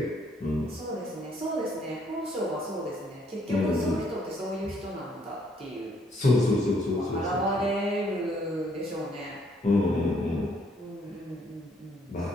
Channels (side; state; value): both; normal; correlation 0.67